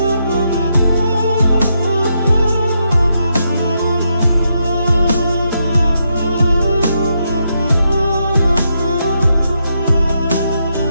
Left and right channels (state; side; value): inverted; both; correlation -0.81